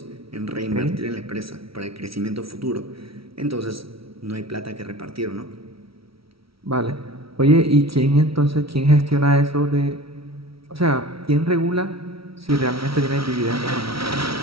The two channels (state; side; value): late; left; 0.75 ms